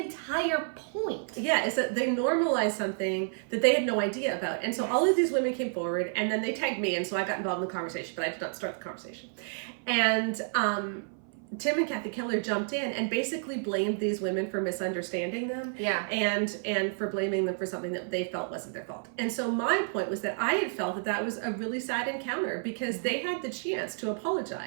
point. Yeah, is that they normalized something that they had no idea about. And so all of these women came forward, and then they tagged me, and so I got involved in the conversation, but I did not start the conversation. And Tim and Kathy Keller jumped in and basically blamed these women for misunderstanding them, and for blaming them for something that they felt wasn't their fault. And so my point was that I had felt that was a really sad encounter, because they had the chance to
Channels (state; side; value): silent; left; 56 dB below the other